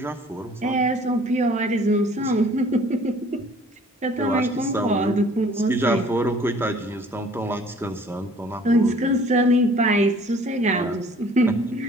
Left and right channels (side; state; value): both; normal; correlation 0.53